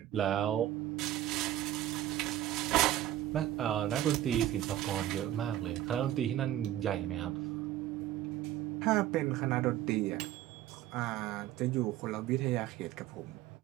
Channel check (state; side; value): quieter; left; 13.2 dB